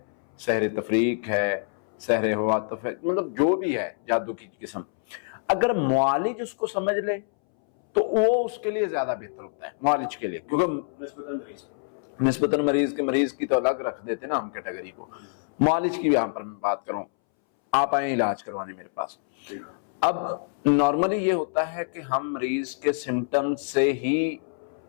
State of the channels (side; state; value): right; silent; 61 dB below the other